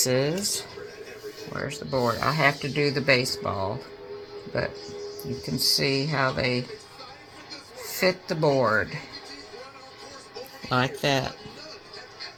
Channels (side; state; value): both; identical; correlation 1.00